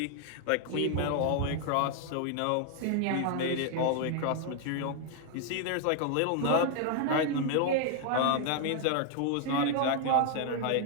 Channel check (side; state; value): both; different; correlation 0.00